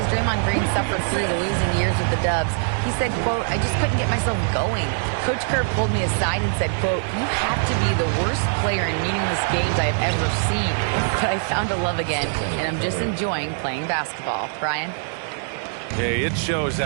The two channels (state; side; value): silent; left; digital silence